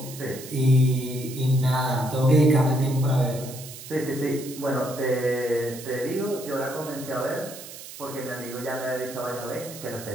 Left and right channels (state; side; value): noise; right; hiss, 14 dB below the sound